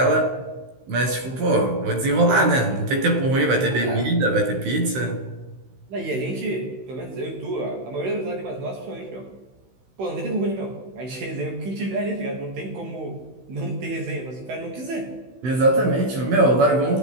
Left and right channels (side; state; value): left; late; 16 ms